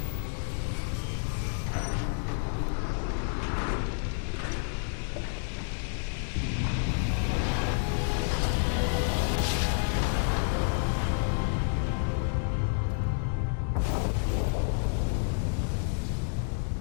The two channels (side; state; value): right; silent; digital silence